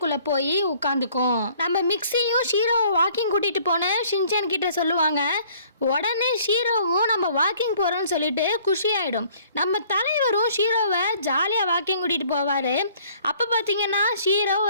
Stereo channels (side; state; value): both; inverted; correlation -0.57